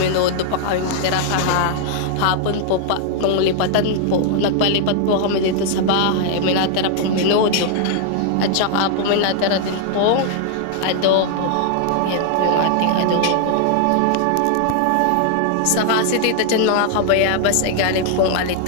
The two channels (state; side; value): different; both; correlation 0.00